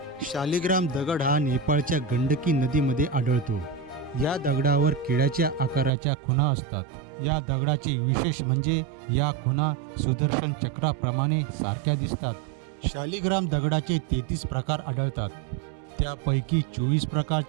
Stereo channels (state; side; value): drops out; left; at 5.9 s